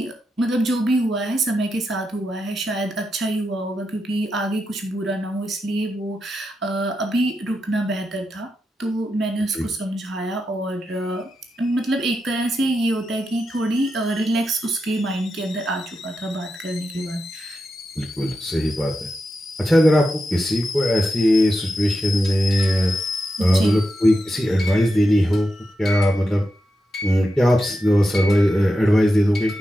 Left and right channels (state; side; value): normal; both; correlation 0.88